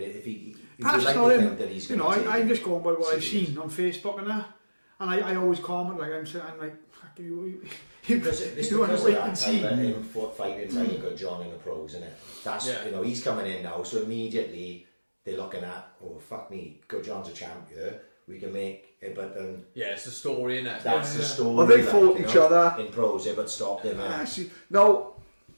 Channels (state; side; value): inverted; both; correlation -1.00